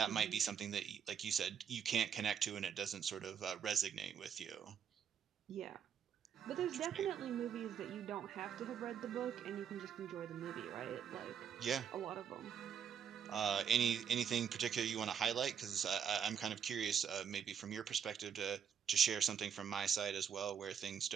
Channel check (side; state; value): left; quieter; 7.9 dB